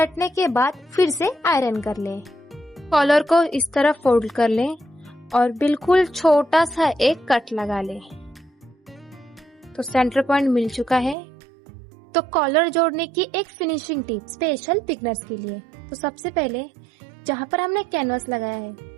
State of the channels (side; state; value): left; drops out; at 11.2 s